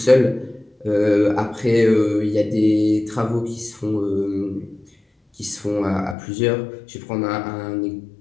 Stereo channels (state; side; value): drops out; right; at 6.2 s